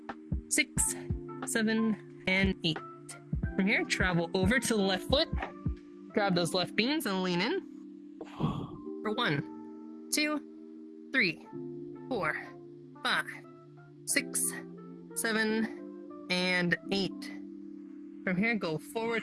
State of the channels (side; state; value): both; identical; correlation 1.00